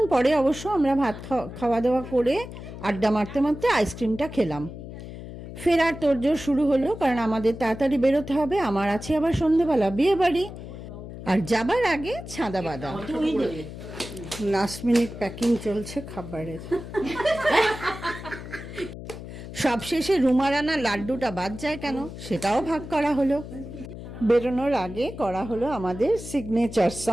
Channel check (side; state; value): left; noise; hum, 11 dB below the sound